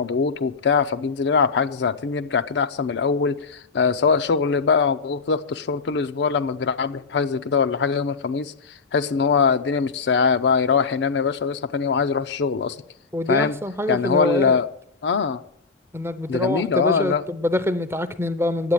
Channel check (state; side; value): quieter; right; 4.5 dB